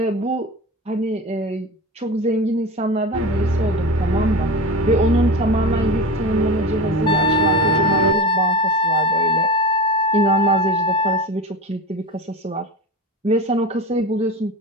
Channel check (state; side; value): normal; both; correlation 0.28